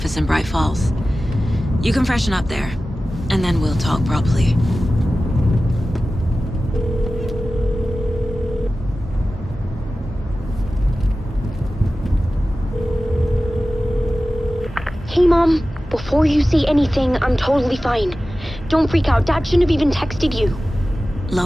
in Bright Falls. You can freshen up there, and then we'll talk properly. Hey, Mom. Before you say anything, I'm totally fine. Don't freak out. Dad shouldn't have even texted you.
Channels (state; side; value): normal; both; correlation 0.95